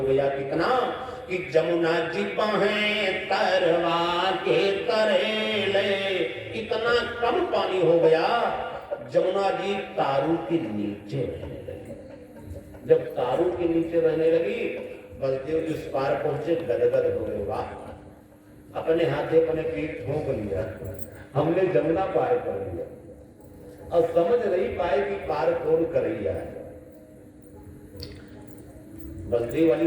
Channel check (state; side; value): identical; both; correlation 1.00